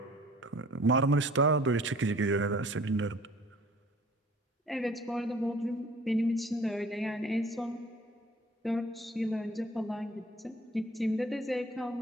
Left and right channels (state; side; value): normal; both; correlation 0.51